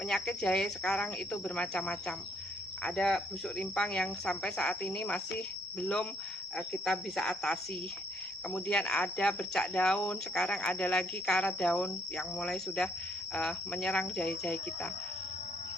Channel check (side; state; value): both; normal; correlation 0.68